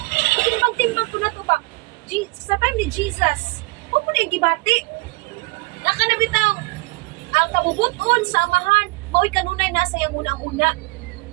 timbang-timbang ko na to ba? Sa time ni Jesus, huwag mo na yung gibati. Nakanabitaw, ang kabubuton sa amahan, mao'y kanunay nasa yung unang-una.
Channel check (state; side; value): quieter; left; 25.3 dB